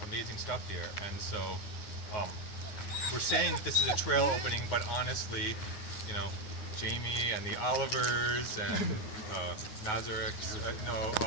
amazing stuff here. And so we're saying that this is a trail opening, but honestly, Jamie and the Olivers and Nazariks,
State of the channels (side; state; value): right; late; 9.6 ms